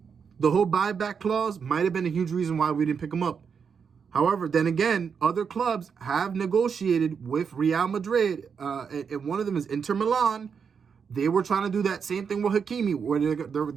the whole buyback clause might have been a huge reason why we didn't pick him up. However, then again, other clubs have negotiated with Real Madrid. And one of them is Inter Milan. They were trying to do that same thing with Hakimi, where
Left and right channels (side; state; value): left; quieter; 6.4 dB